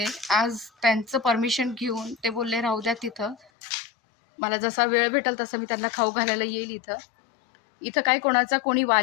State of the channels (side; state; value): right; drops out; at 3.5 s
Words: आज त्यांचं परमिशन घेऊन ते बोलले राहू द्या तिथं, मला जसा वेळ भेटेल तसं मी त्यांना खाऊ घालायला येईल. इथं काही कोणाचा कोणी